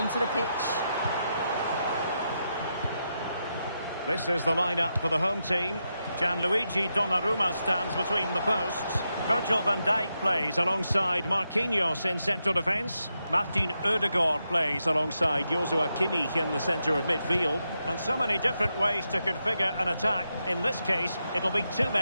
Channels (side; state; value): both; inverted; correlation -0.85